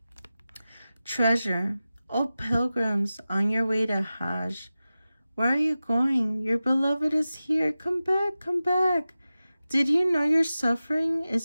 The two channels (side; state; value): both; inverted; correlation -0.95